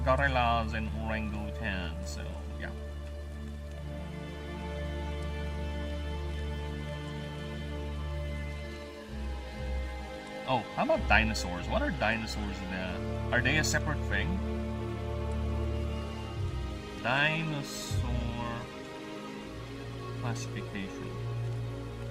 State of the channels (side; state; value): both; identical; correlation 1.00